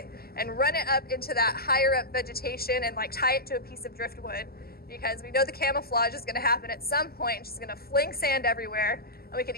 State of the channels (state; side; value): late; right; 0.45 ms